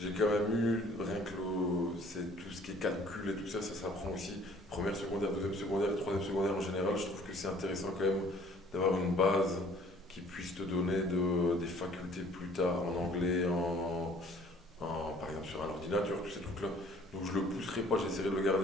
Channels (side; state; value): both; normal; correlation 0.55